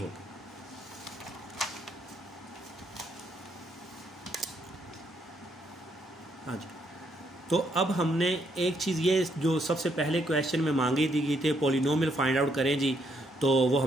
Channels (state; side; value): normal; both; correlation 0.74